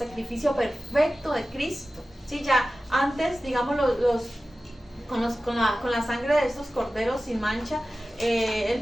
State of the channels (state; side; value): normal; both; correlation 0.95